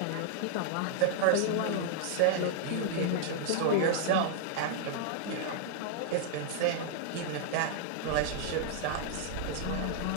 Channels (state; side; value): different; both; correlation 0.00